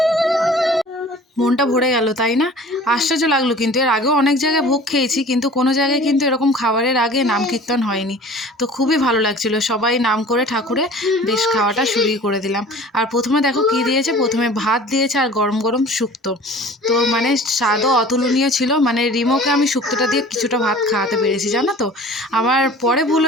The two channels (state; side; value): normal; both; correlation 0.44